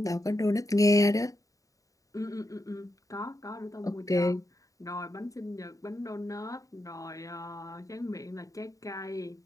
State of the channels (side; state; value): right; late; 0.16 ms